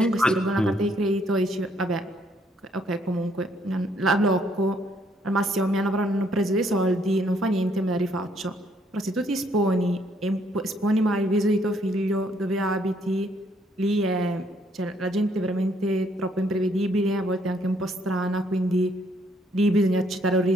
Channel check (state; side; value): normal; both; correlation 0.69